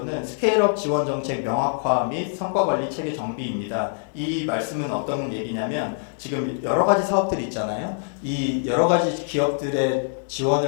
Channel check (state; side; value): silent; right; digital silence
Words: 스케일업 지원 정책 명확화 및 성과 관리 체계 정비입니다. 이 말씀은 어떤 얘기냐면 지금 여러 가지 사업들이 있잖아요. 이 여러 가지 기업들의